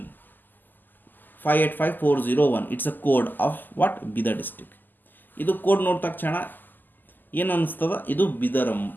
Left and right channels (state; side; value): late; right; 0.088 ms